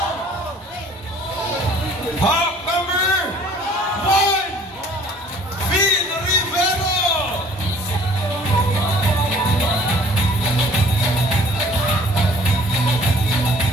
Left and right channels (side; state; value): both; normal; correlation 0.54